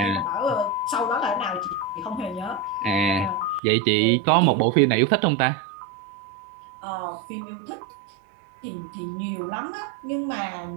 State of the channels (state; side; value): drops out; left; at 3.6 s